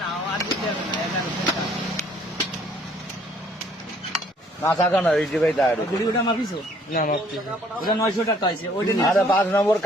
নাও আর দিতে হবে না 11 কাঁচা কানা রেডি ভাই দাঁড়িয়ে গুড়িটা মাপিছো না মাপছি ওটা 900 টাকা আছে ওইটা আরে 5 নম্বর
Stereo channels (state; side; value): normal; both; correlation 0.61